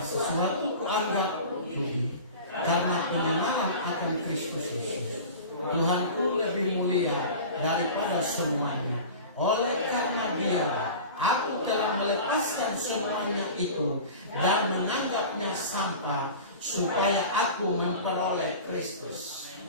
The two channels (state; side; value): inverted; both; correlation -0.36